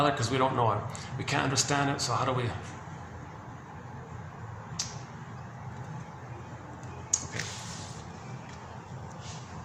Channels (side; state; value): both; identical; correlation 1.00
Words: because we don't know it. We can't understand it, so how do we? Okay.